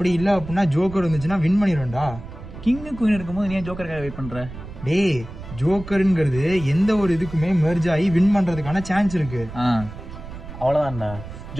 இல்ல அப்படின்னா ஜோக்கர் வந்துச்சுன்னா வின் பண்ணிடுவேன்டா. கிங்கு குயின் இருக்கும்போது நீ ஜோக்கருக்காக வெயிட் பண்ற? டேய் ஜோக்கருங்கிறது எந்த ஒரு இதுக்குமே மெர்ஜ் ஆகி வின் பண்றதுக்கான சான்ஸ் இருக்கு. அவ்வளவுதான்டா.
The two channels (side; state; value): right; noise; rumble, 13 dB below the sound